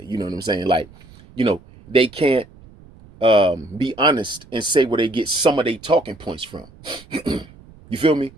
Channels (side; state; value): right; noise; rumble, 23 dB below the sound